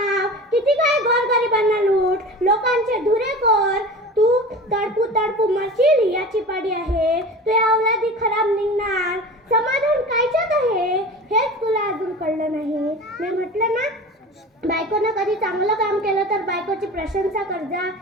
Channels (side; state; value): both; normal; correlation 0.35